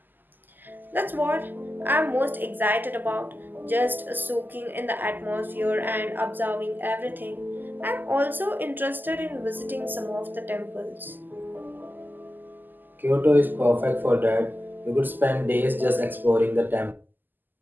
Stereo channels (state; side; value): late; left; 0.088 ms